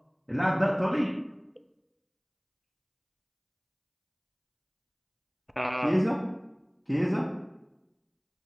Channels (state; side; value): identical; both; correlation 1.00